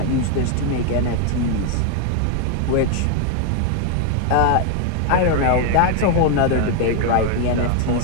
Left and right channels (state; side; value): different; both; correlation 0.01